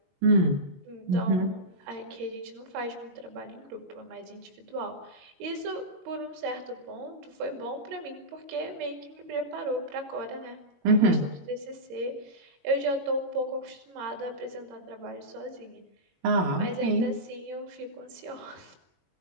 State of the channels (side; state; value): left; late; 22 ms